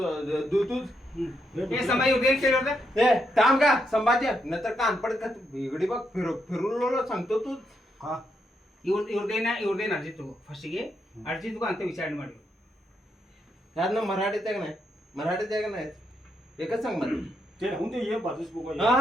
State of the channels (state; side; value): normal; both; correlation 0.80